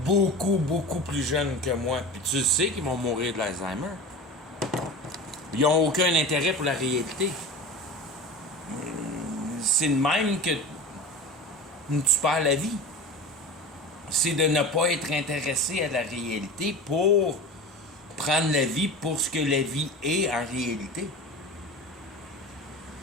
beaucoup plus jeunes que moi. Puis tu sais qu'ils vont mourir de l'Alzheimer. Ils n'ont aucun intérêt pour la réalité. C'est de même que tu perds la vie. C'est de ne pas être intéressé à la réalité pour prendre la vie pour ce que la vie est en réalité.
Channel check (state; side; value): normal; both; correlation 0.32